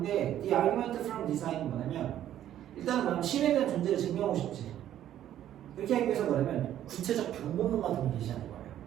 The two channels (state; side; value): quieter; left; 11.6 dB